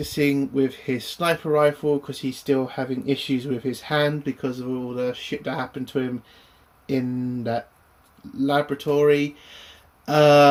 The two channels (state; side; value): identical; both; correlation 1.00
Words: with his sniper rifle because he's still having issues with his hand because of all the shit that happened to him in that laboratory.